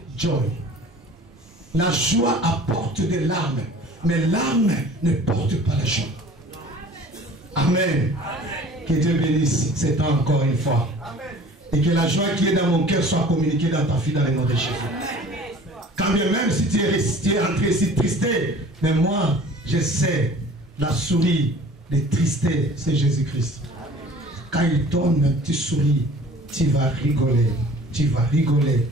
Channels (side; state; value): both; normal; correlation 0.47